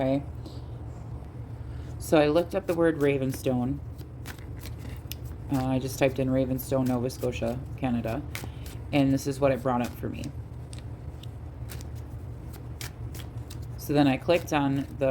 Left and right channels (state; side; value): identical; both; correlation 1.00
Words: So I looked up the word Ravenstone. I just typed in Ravenstone, Nova Scotia, Canada, and this is what it brought up for me. So then I clicked on